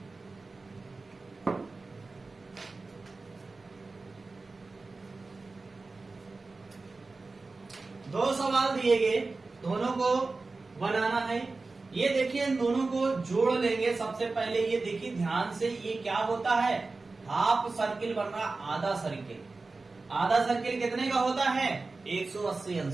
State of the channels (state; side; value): quieter; left; 3.7 dB